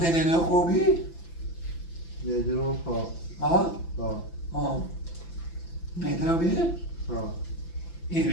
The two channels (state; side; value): late; right; 5.9 ms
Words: أنا خوبي. يدرون ها. مهتم بيه؟